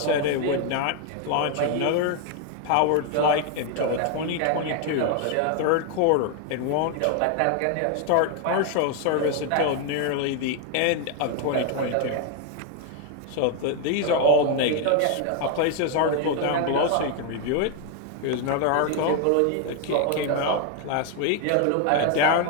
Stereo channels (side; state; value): both; different; correlation 0.00